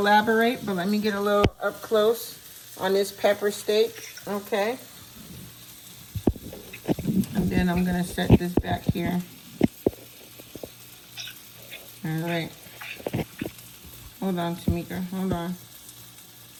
But let me get a little up close on this pepper steak, okay? And then I'm gonna set this back here. All right. Hold on, Tamika. Hold on.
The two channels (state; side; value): identical; both; correlation 1.00